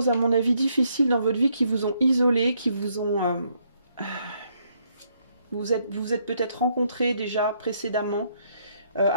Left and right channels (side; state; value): both; inverted; correlation -0.72